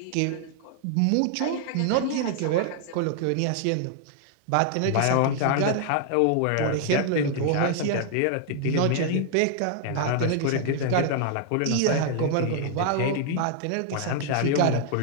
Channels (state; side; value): different; both; correlation 0.00